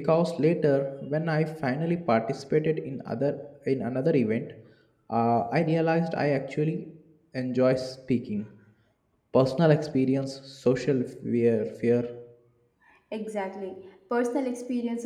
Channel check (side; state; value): both; identical; correlation 1.00